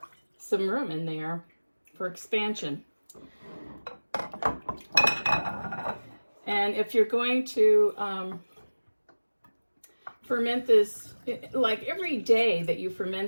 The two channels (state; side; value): inverted; both; correlation -1.00